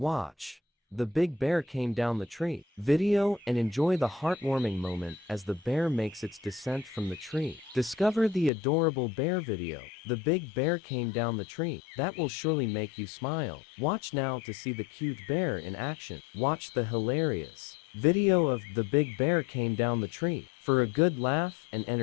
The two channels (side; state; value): right; drops out; at 8.5 s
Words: Watch. The big bear came down the tree. Video and enjoy the heartwarming moment as the bear makes its descent from the tree. Discover the adorable bear video. The big bear came down the tree. That will surely make you smile. Watch now to see the cute bear in action. Watch the hilarious video of the big bear came down the tree for a good laugh and